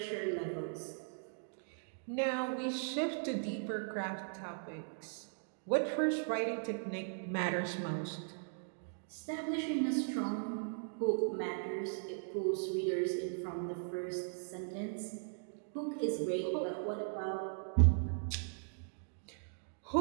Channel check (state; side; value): silent; left; digital silence